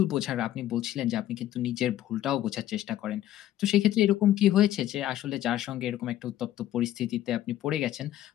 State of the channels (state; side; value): quieter; right; 12.9 dB